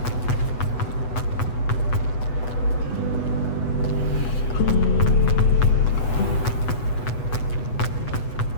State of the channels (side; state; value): right; late; 8.1 ms